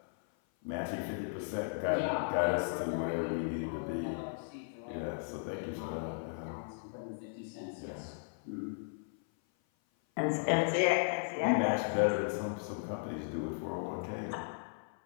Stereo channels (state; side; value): silent; right; 54 dB below the other